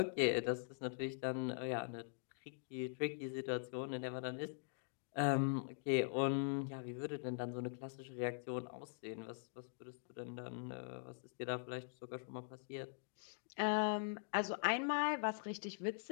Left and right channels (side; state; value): right; silent; digital silence